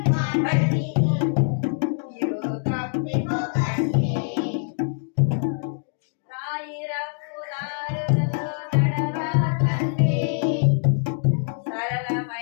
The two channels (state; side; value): silent; right; digital silence